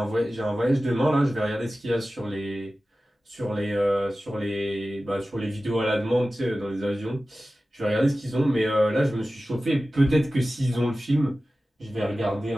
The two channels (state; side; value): normal; both; correlation 0.95